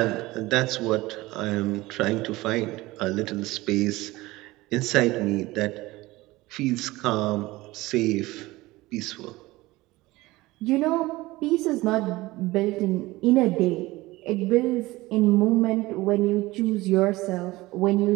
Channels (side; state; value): left; quieter; 19.6 dB